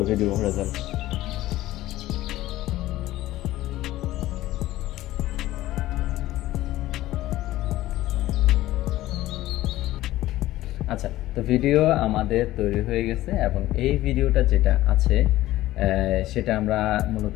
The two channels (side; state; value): right; quieter; 15.7 dB